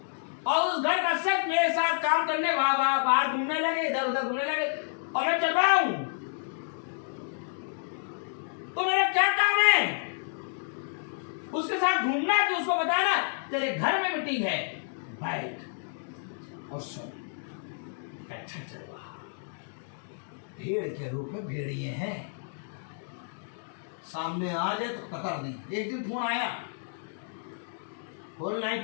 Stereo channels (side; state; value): right; silent; digital silence